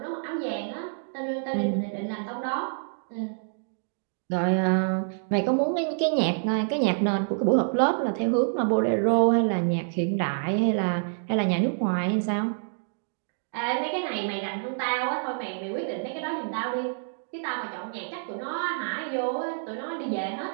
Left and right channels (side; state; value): left; silent; digital silence